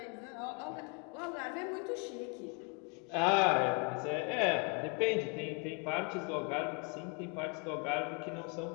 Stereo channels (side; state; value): right; quieter; 34.4 dB